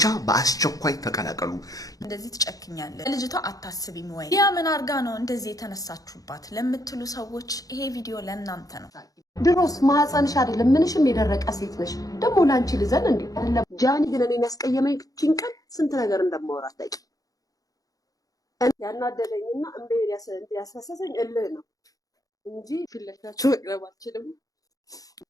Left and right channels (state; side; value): late; right; 0.17 ms